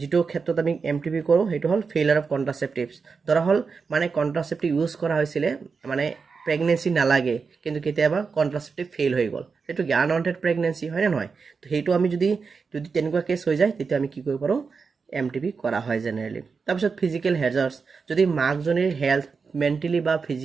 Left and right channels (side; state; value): left; quieter; 5.1 dB